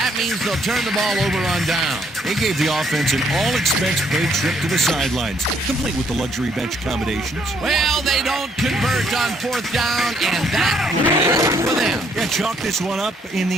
means they'll turn the ball over on down. They gave the offense an all-expense-paid trip to the sidelines, complete with the luxury bench accommodations. Well, they don't convert on fourth down, and that will be it for them. Yeah, chalk this one up in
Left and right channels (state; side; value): normal; both; correlation 0.68